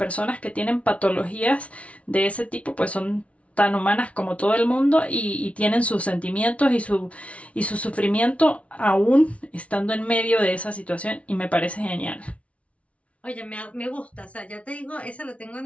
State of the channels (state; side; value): late; right; 0.064 ms